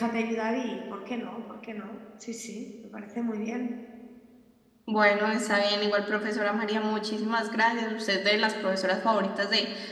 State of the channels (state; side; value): identical; both; correlation 1.00